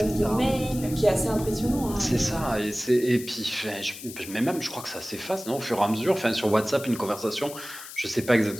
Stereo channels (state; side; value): noise; left; hiss, 13 dB below the sound